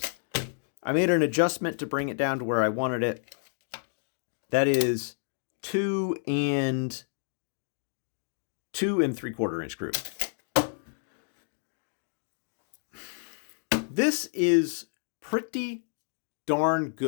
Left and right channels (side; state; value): right; silent; digital silence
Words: I made an adjustment to bring it down to where I wanted it. That is 2 3/4 inch group. This is pretty darn